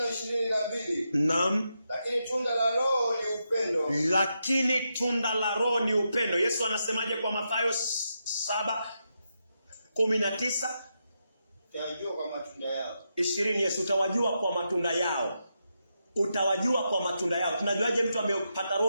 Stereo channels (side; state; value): both; inverted; correlation -0.85